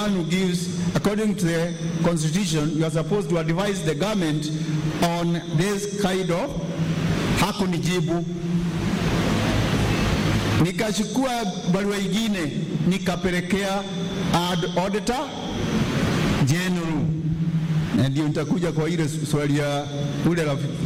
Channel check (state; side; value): identical; both; correlation 1.00